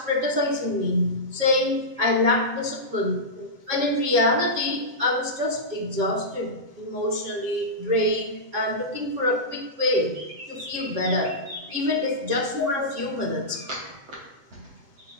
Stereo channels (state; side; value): late; left; 7.8 ms